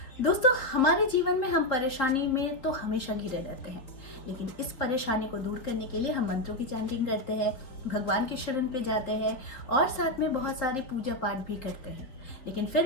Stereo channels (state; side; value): late; right; 4.0 ms